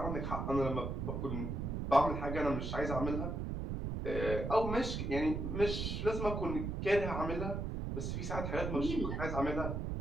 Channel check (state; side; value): noise; right; rumble, 3 dB below the sound